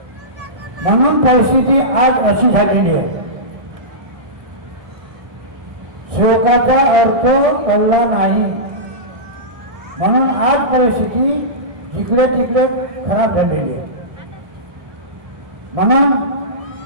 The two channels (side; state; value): left; late; 1.6 ms